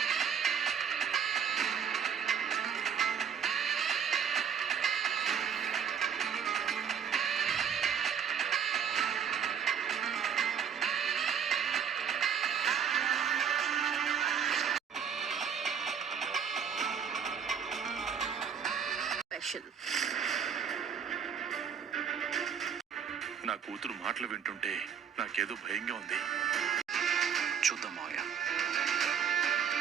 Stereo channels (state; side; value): quieter; left; 7.6 dB